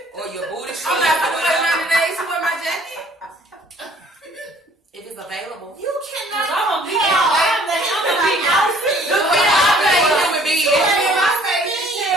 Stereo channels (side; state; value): both; normal; correlation 0.57